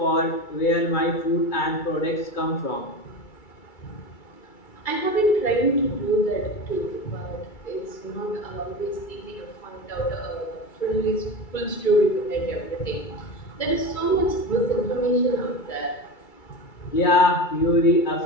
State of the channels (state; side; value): late; right; 2.3 ms